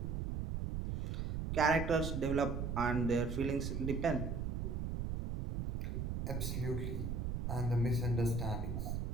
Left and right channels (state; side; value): noise; right; rumble, 2 dB below the sound